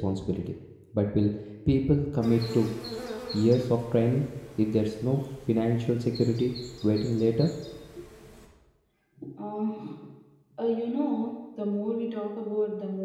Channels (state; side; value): identical; both; correlation 1.00